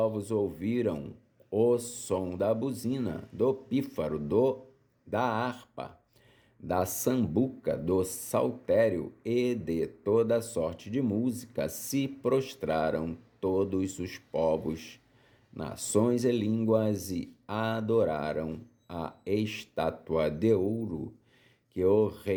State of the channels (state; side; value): identical; both; correlation 1.00